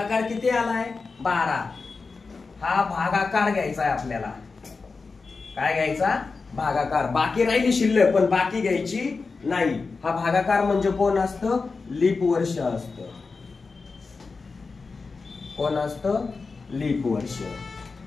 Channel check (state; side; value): quieter; right; 4.4 dB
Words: किती आलाय? 12. हा भागाकार घ्यायचा आहे आपल्याला. काय घ्यायचा? भागाकार. बाकी राहिली शिल्लक, पण बाकी घ्यायची नाही. हा भागाकार म्हणजे कोण असतं? लीप वर्ष असतं. कोण असतं? लीप वर्ष.